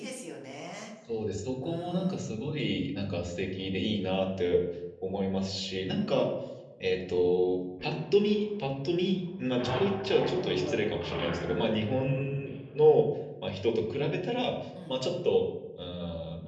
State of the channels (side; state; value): both; identical; correlation 1.00